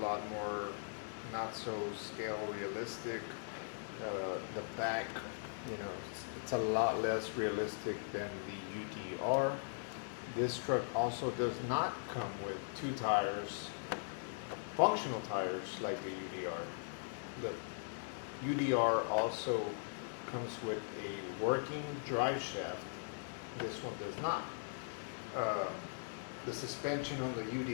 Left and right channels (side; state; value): right; silent; digital silence